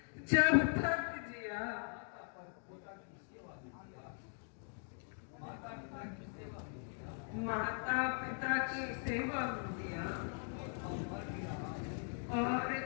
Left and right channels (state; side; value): silent; right; 51 dB below the other